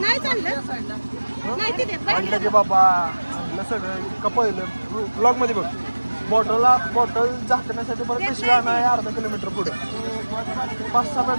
नाही चाललं नाही तिथे म्हटलं की बाबा म्हटलं सगळं इतकं पहिलं ब्लॉग मध्ये बघ बॉटल झाकण्यासाठी परत पिशवी नाही अर्धा किलोमीटर पुढे 5-6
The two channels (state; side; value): inverted; both; correlation -1.00